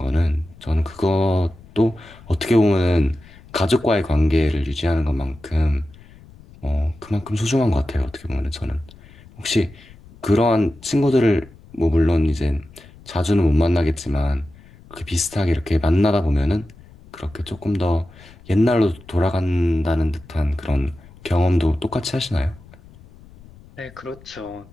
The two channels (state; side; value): noise; left; rumble, 23 dB below the sound